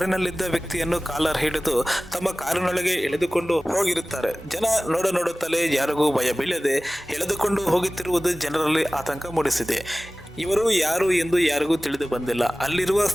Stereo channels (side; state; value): both; normal; correlation 0.97